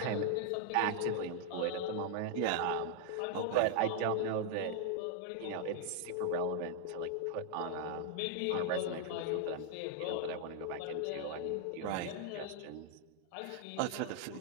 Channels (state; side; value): different; both; correlation 0.00